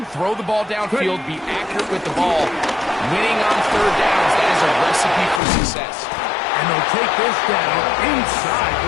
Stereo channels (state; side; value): drops out; right; at 5.4 s